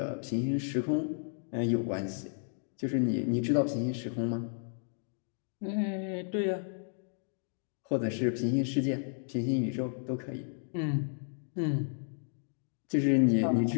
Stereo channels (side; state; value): right; silent; digital silence